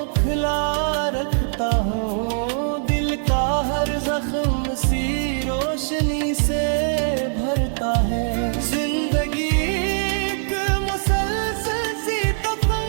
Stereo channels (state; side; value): silent; left; digital silence